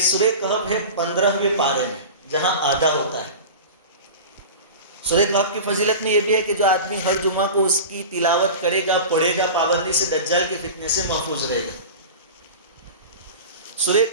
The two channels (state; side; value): inverted; both; correlation -0.32